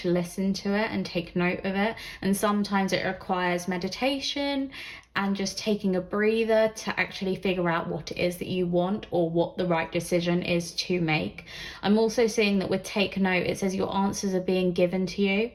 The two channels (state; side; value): identical; both; correlation 1.00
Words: listen to it and take note of it. And sometimes it requires meditation and just taking a breather to actually figure out what it is that you want or what the right decision is to make. I'm also seeing that with take note, it says your answers are being given to you.